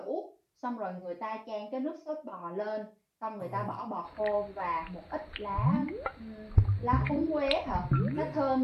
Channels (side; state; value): both; identical; correlation 1.00